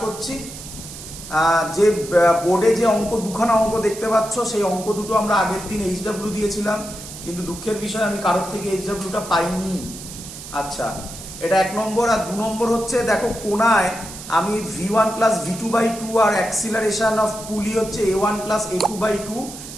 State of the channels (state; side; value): noise; right; hiss, 13 dB below the sound